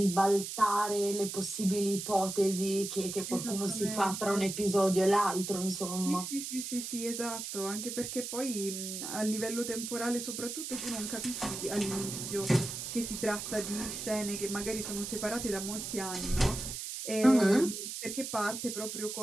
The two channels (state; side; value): noise; right; hiss, 6 dB below the sound